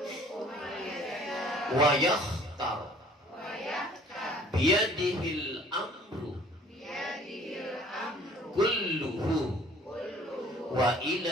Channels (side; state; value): both; normal; correlation 0.53